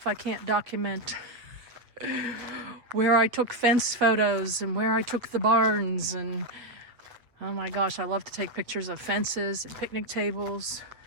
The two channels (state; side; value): late; left; 8.2 ms